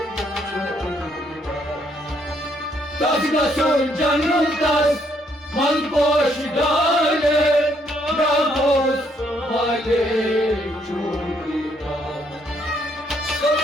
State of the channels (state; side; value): normal; both; correlation 0.70